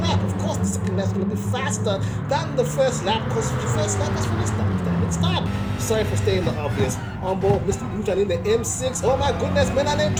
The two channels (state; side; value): identical; both; correlation 1.00